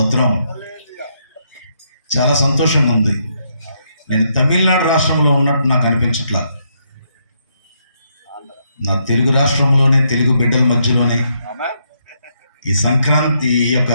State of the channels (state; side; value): inverted; both; correlation -0.76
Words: చాలా సంతోషంగా ఉంది. నేను తమిళనాడు రాష్ట్రంలో ఉన్నట్టు నాకు అనిపించట్లా. నా తెలుగు రాష్ట్రంలోనే, తెలుగు బిడ్డల మధ్యలోనే ఈ సంక్రాంతి, ఈ యొక్క